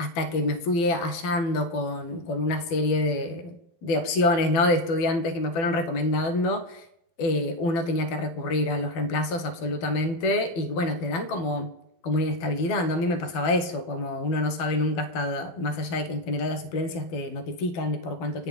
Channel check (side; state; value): right; late; 12 ms